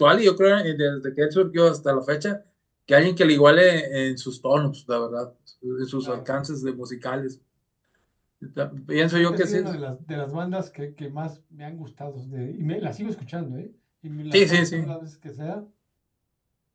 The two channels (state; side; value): identical; both; correlation 1.00